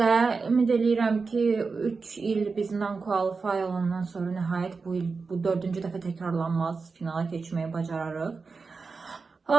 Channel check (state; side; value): quieter; left; 4.5 dB